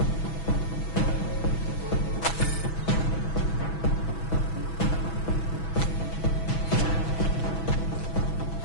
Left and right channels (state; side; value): late; right; 6.1 ms